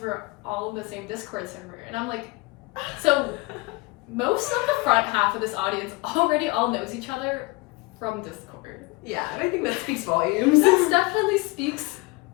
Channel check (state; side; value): quieter; right; 24.3 dB